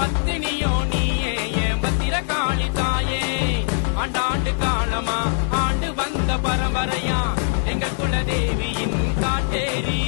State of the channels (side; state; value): right; silent; digital silence